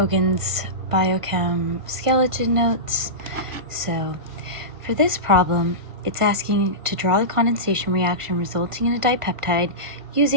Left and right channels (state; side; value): late; left; 1.5 ms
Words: Biochem Skeleton Notes. So for this problem, it's asking to draw the condensation reaction resulting in a dipeptide